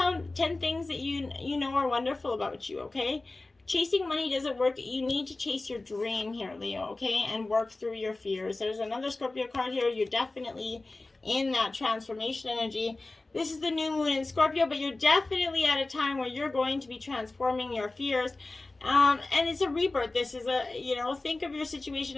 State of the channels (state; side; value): quieter; right; 3.1 dB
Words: 10 things that you know are wonderful about you, okay? Chasing money doesn't work. You need to chase your dream here, Leo, okay? And work through your fears. There's another Scorpio card here. You're definitely in that transformation energy. This is the new moon in Scorpio, but you're definitely at a time where you're going to be transforming your fears. And it's a rebirth. This is a, you know, think of your